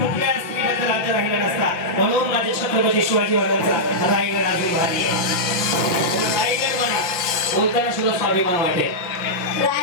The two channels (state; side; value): late; right; 5.7 ms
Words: कुठल्या स्त्रीबद्दल राज्य राहिला नसता म्हणून माझे छत्रपती शिवाजी महाराजांचा रायगड अजून भारी रायगड म्हणा बोलताना सुद्धा स्वाभिमान वाटेल.